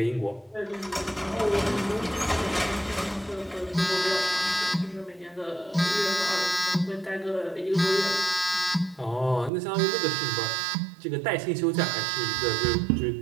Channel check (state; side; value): drops out; left; at 9.5 s